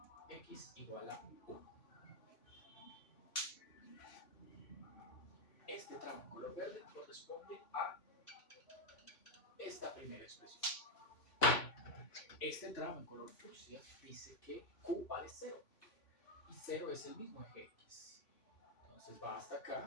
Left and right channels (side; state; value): right; late; 3.5 ms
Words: X igual a 1. Este tramo en color verde corresponde a esta primera expresión. Este tramo en color fucsia dice que q vale 0 y 0 es el mismo eje x. Entonces va hasta